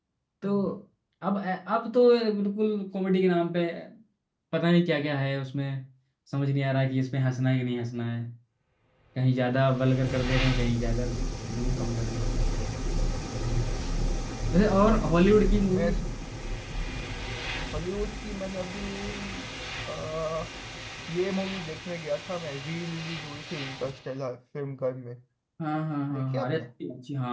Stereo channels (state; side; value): identical; both; correlation 1.00